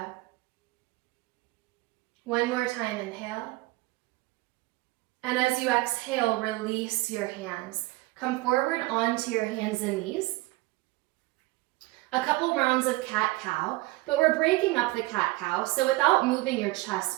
One more time, inhale. And as you exhale, release your hands. Come forward onto your hands and knees. A couple rounds of cat-cow, but we're breaking up the cat-cow, so without moving your chest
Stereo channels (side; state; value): left; quieter; 21.2 dB